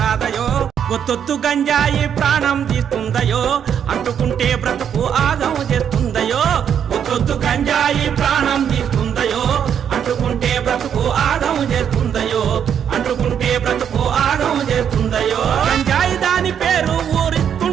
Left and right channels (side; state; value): left; quieter; 8.5 dB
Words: ఒత్తొత్తు గంజాయి ప్రాణం తీస్తుందయో అంటుకుంటే బ్రతుకు ఆగం చేస్తుందయో ఒత్తొత్తు గంజాయి ప్రాణం తీస్తుందయో అంటుకుంటే బ్రతుకు ఆగం చేస్తుందయో అంటుకుంటే బ్రతుకు ఆగం చేస్తుందయో గంజాయి దాని పేరు